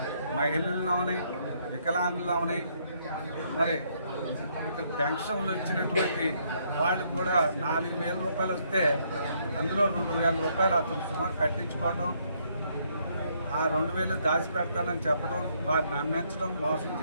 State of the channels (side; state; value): both; inverted; correlation -0.71